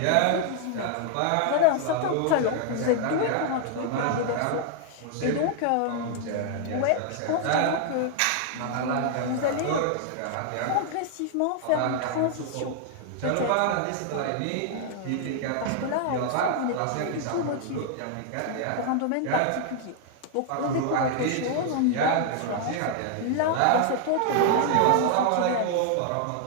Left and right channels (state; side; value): different; both; correlation 0.00